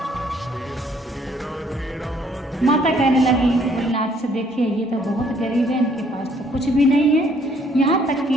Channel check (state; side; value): normal; both; correlation 0.64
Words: माता कहने लगी भोलेनाथ से देखिए ये तो बहुत गरीब है, इनके पास तो कुछ भी नहीं है, यहाँ तक कि